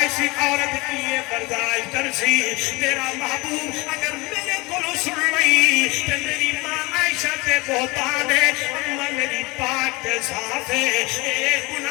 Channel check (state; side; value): quieter; right; 24.4 dB